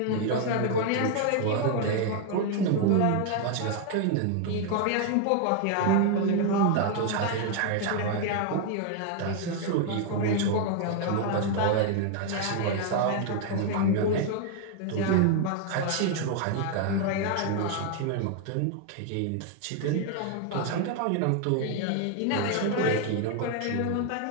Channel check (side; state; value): both; different; correlation 0.00